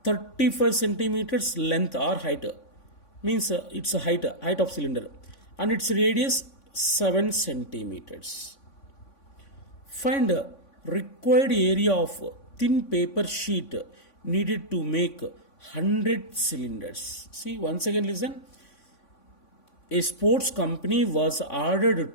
35 centimeters length or height, means it's a height of cylinder, and its radius 7 centimeters. Find required area of thin paper sheet needed to make 100 cylinders. See, once again listen. a sports company was ordered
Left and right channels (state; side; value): late; right; 3.5 ms